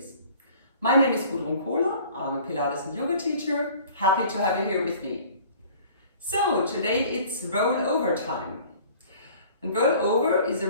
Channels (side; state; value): both; inverted; correlation -0.49